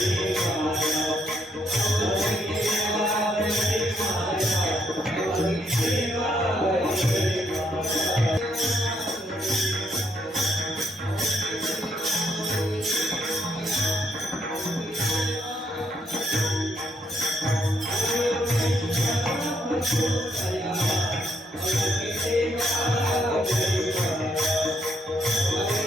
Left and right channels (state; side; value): normal; both; correlation 0.72